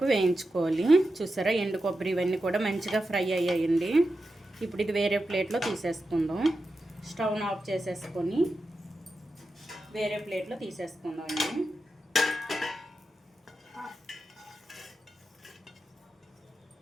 వేయించుకోవాలి. చూసారా, ఎండు కొబ్బరి ఇవన్నీ కూడా మంచిగా ఫ్రై అయ్యాయండి. ఇప్పుడు ఇది వేరే ప్లేట్లో తీసేసుకుందాం. స్టవ్ను ఆఫ్ చేసేసుకొని వేరే ప్లేట్లో తీసేసుకుందాం అండి.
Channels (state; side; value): normal; both; correlation 0.90